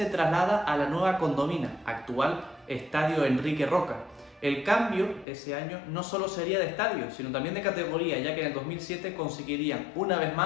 traslada a la nueva Condomina, actual Estadio Enrique Roca. El cambio ese año no solo sería de estadio, sino también de categoría, ya que en el 2007 conseguirían una vez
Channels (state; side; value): drops out; right; at 5.2 s